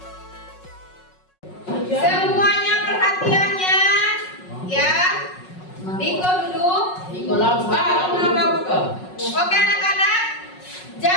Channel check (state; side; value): late; right; 5.4 ms